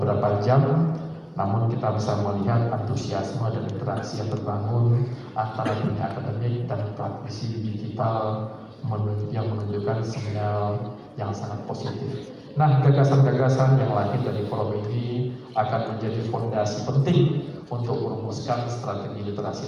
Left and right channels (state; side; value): identical; both; correlation 1.00